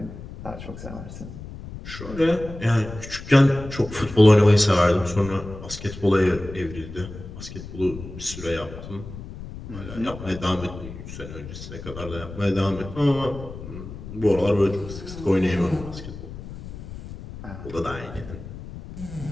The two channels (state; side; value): noise; left; rumble, 12 dB below the sound